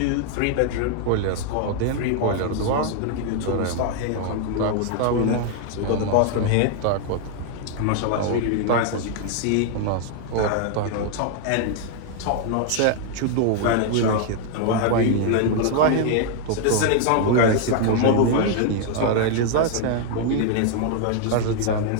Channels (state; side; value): different; both; correlation 0.00